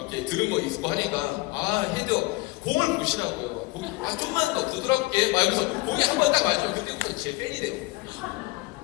들은 거 있고 하니까 아 헤드 공을 보시라고요. 공이 좀만 더 부드럽게 막 이러면서 공이 한 번 딱 맞아요. 그때부터 제 팬이 돼요.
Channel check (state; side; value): quieter; right; 22.5 dB